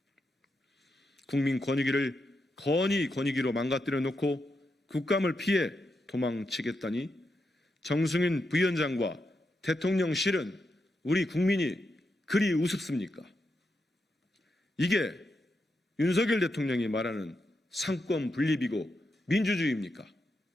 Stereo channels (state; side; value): normal; both; correlation 0.85